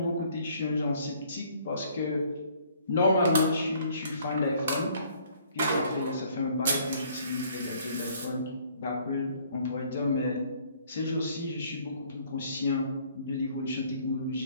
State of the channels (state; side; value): inverted; both; correlation -0.60